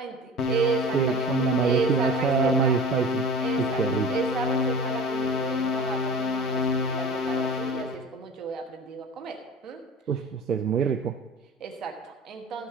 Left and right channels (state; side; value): normal; both; correlation 0.38